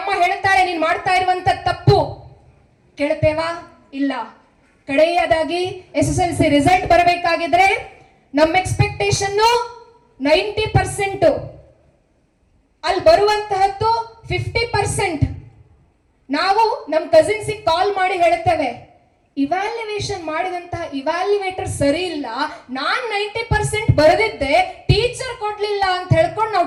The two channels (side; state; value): both; identical; correlation 1.00